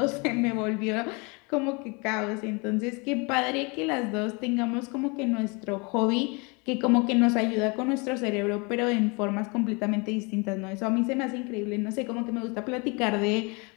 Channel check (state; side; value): quieter; right; 29.9 dB